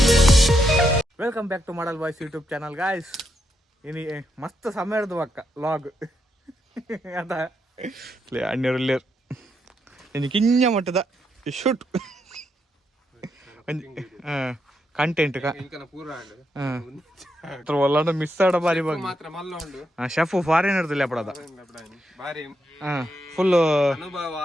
welcome back to model boys YouTube channel guys. ಇನಿ ಮಸ್ತ್ ಸಮಯ ಹಿಡ್ದು ಅಕ್ಕ ಲಾಗ್ ಅದ ಅಣ್ಣೂರಲ್ಲಿಯರ್ ಇನ್ನು ಕಿಂಜ ಮಟ್ಟದ ಶೂಟ್ ಕಂಟೆಂಟ್ ಒಲ್ಲ ಮಿಸ್ ಆಡ ಬಾರಿ ಶೆಫ್ ಫಾರಿನರ್ದಲ್ಲಿ ಅಪಡದ ಫುಲ್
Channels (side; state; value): both; normal; correlation 0.80